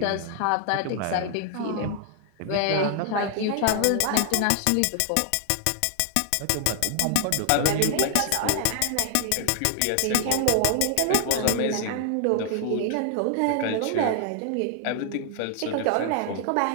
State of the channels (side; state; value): both; different; correlation 0.00